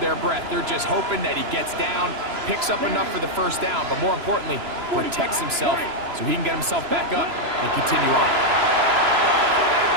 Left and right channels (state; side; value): late; left; 3.0 ms